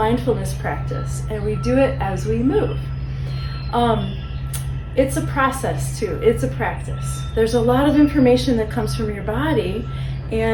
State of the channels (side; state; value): both; identical; correlation 1.00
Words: practice, and we do it as we move. It's a process too, it's a practice. There's a lot of information that comes from your body,